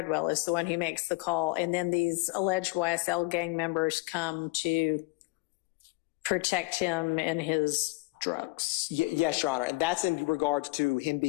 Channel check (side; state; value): right; quieter; 24.1 dB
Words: is the one who makes the call. And then these alleged YSL gang members come to protect him and his drugs. Yes, Your Honor. And that's in regards to him